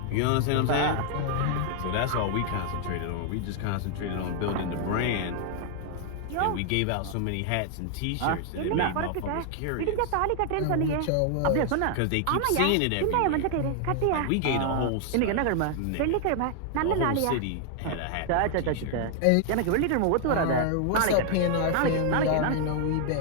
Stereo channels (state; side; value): different; both; correlation 0.00